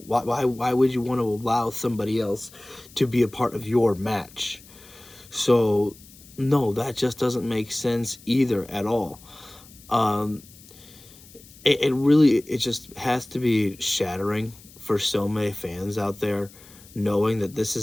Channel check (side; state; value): left; noise; hiss, 22 dB below the sound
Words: Why would you want to allow somebody else to be a part of your match? So, no, that just doesn't make sense either at all. It just has to be shattering for so many fans out there, knowing that this